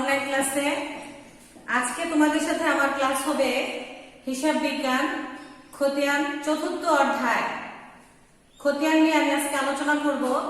ক্লাসে। আজকে তোমাদের সাথে আমার ক্লাস হবে হিসাব বিজ্ঞান খতিয়ান চতুর্থ অধ্যায়। খতিয়ান নিয়ে আমি আজকে আলোচনা করব।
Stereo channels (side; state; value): both; identical; correlation 1.00